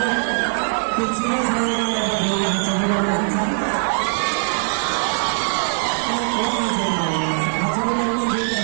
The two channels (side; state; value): left; silent; 65 dB below the other